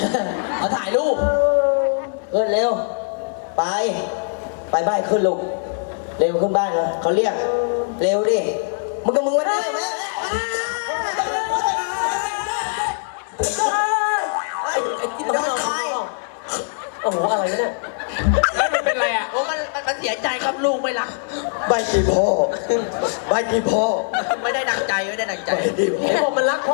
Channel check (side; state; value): right; silent; digital silence